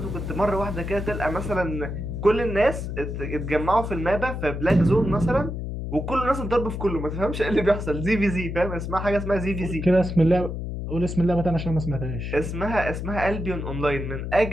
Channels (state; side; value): noise; left; hum, 5 dB below the sound